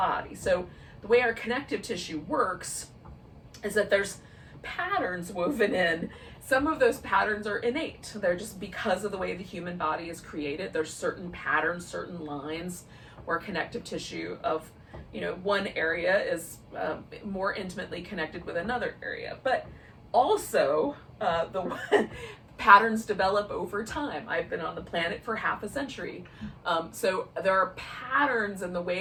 So the way our connective tissue works is that there's patterns woven in. Some of those patterns are innate. They're just because of the way the human body is created. There's certain patterns, certain lines where connective tissue of one area is more intimately connected with another area. But also the patterns develop over time. I've been on the planet for half a century. So there are patterns in the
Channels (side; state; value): both; identical; correlation 1.00